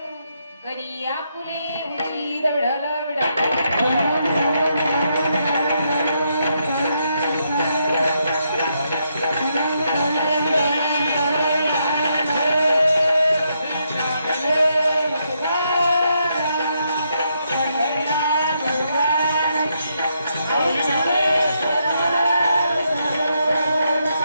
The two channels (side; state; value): both; inverted; correlation -0.78